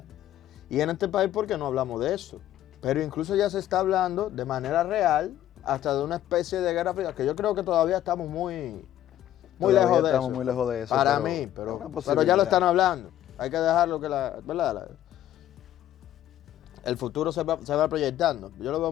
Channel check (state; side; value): quieter; right; 12.4 dB